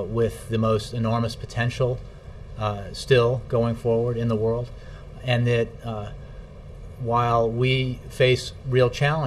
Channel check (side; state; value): both; identical; correlation 1.00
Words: with the most enormous potential still going forward in the world, and that while we face real